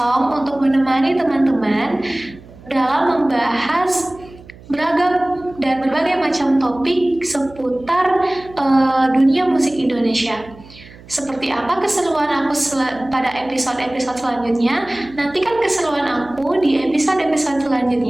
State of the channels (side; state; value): right; noise; hum, 21 dB below the sound